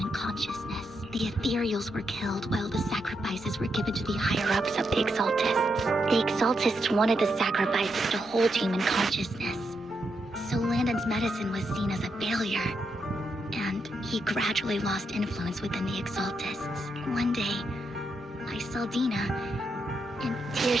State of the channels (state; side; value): noise; left; rumble, 26 dB below the sound